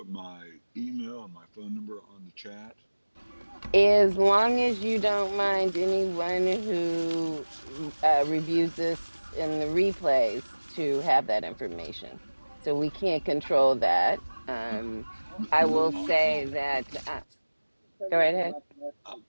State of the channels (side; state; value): both; inverted; correlation -1.00